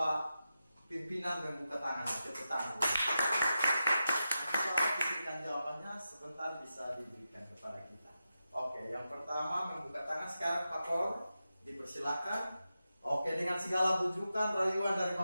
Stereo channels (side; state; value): both; inverted; correlation -0.90